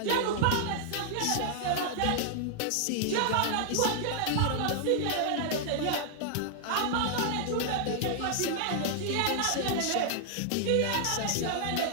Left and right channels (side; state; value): both; different; correlation 0.00